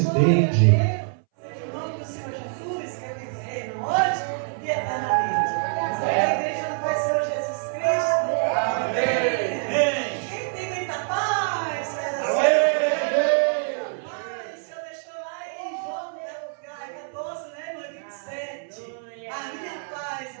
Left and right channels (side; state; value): left; silent; 61 dB below the other